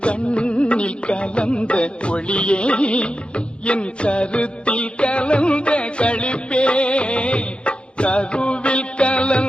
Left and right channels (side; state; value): right; late; 0.057 ms